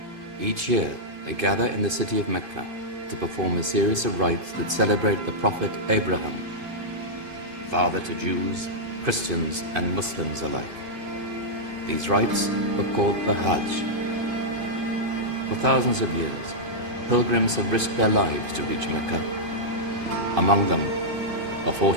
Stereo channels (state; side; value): late; left; 2.5 ms